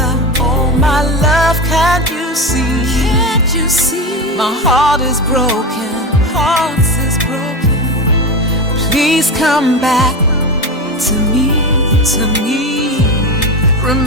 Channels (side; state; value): both; normal; correlation 0.21